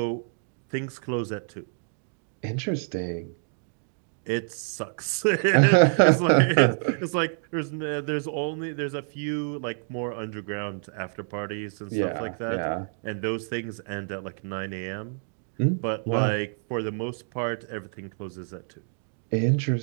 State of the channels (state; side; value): silent; left; 60 dB below the other